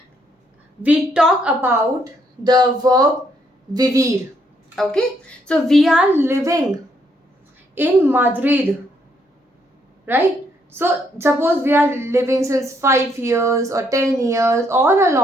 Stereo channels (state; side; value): normal; both; correlation 0.72